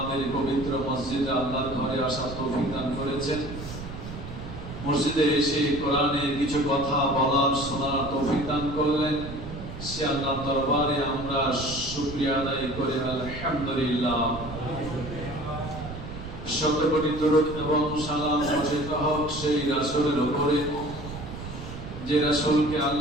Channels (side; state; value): right; noise; rumble, 10 dB below the sound